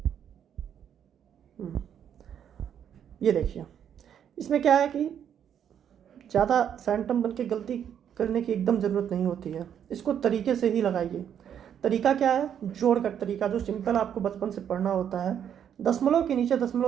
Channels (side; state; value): left; quieter; 9.0 dB